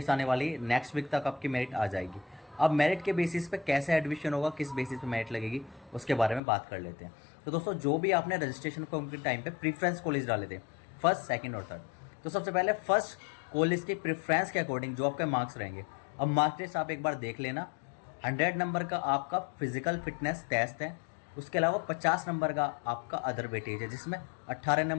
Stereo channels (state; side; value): drops out; right; at 6.4 s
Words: आने वाली है, नेक्स्ट वीक तक आपकी मेरिट आ जाएगी। अब मेरिट के बेसिस पे कैसे एडमिशन होगा, किस बेसिस पे मेरिट लगेगी, उसके बारे में बात कर लेते हैं। तो दोस्तों जो भी आपने रजिस्ट्रेशन फॉर्म के टाइम पे प्रीफ्रेंस कॉलेज डाले थे, फर्स्ट, सेकंड और थर्ड, तो सबसे पहले फर्स्ट कॉलेज की प्रेफरेंस के अकॉर्डिंग जो आपके मार्क्स रहेंगे, अब मार्क्स लिस्ट आप एक बार देख लेना। 100 नंबर का आपका फिजिकल फिटनेस टेस्ट है, उसके अलावा 50 नंबर का आपका अदर वेटेज है, जिसमें 18